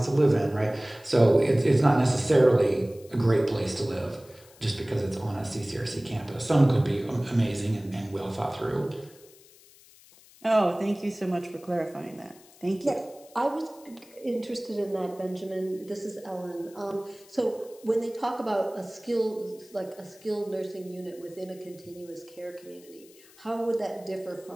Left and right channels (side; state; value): left; noise; hiss, 25 dB below the sound